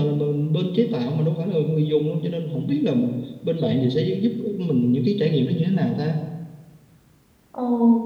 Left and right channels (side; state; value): both; identical; correlation 1.00